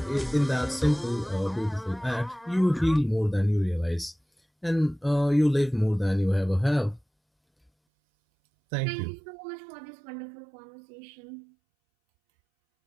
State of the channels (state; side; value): drops out; left; at 7.7 s